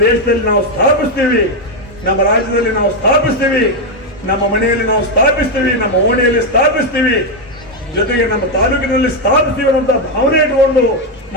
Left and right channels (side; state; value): both; normal; correlation 0.05